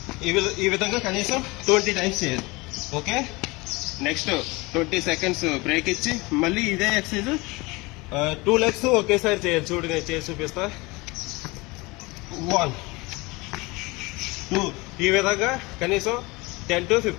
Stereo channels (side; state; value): right; quieter; 24.1 dB